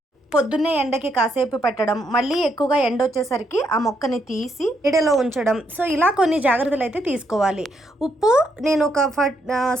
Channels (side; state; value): both; normal; correlation 0.76